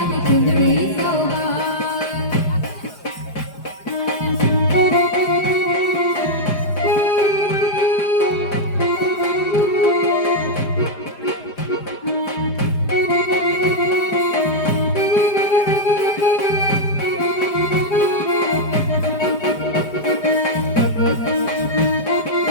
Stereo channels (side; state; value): right; late; 4.9 ms